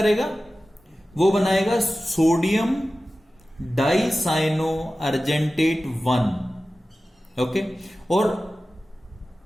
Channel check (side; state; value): both; normal; correlation 0.95